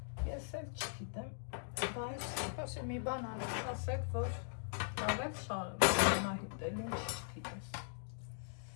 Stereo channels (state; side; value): silent; right; digital silence